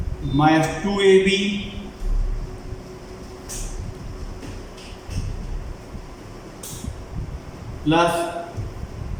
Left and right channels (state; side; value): identical; both; correlation 1.00